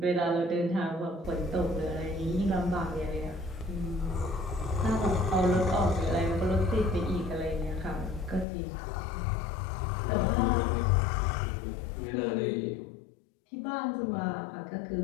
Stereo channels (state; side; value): drops out; right; at 8.5 s